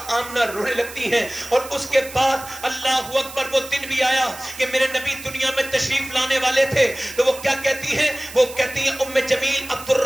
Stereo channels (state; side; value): noise; right; hiss, 15 dB below the sound